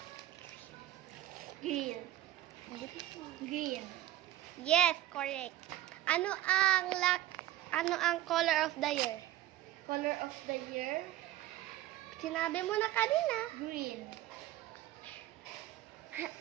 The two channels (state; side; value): quieter; left; 14.4 dB